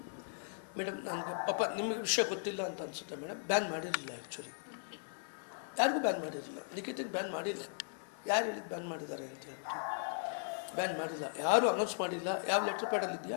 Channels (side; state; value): right; silent; digital silence